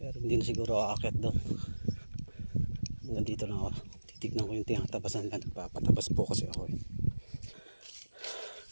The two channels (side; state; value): both; inverted; correlation -1.00